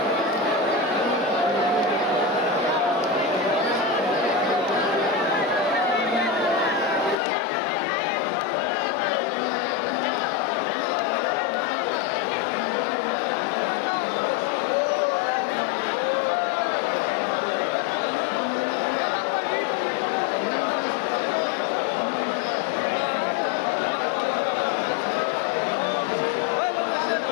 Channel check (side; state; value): right; drops out; at 7.2 s